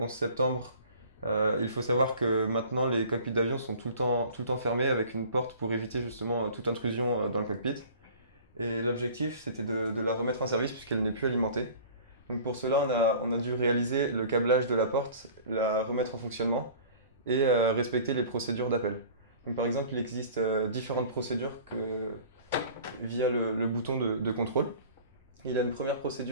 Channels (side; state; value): both; inverted; correlation -0.45